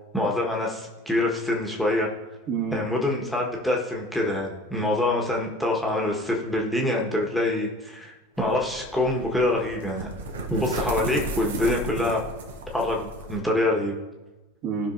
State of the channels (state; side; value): normal; both; correlation 0.46